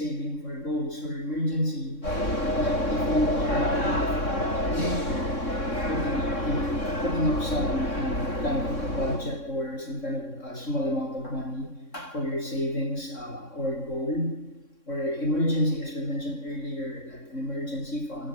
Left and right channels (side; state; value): right; late; 3.6 ms